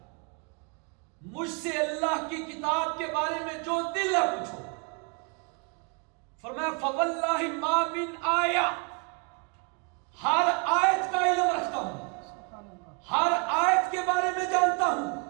مجھ سے اللہ کی کتاب کے بارے میں جو دل ہے پوچھو. فرمایا فواللہ ما من آیہ، ہر آیت کا علم رکھتا ہوں، ہر آیت کے بارے میں جانتا ہوں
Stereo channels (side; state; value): left; quieter; 34.8 dB